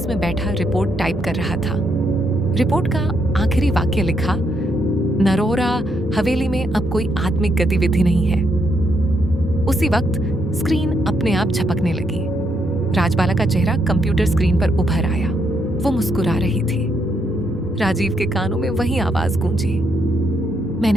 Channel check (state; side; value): normal; both; correlation 0.76